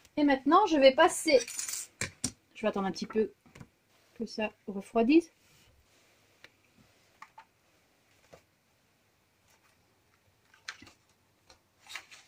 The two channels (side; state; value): both; identical; correlation 1.00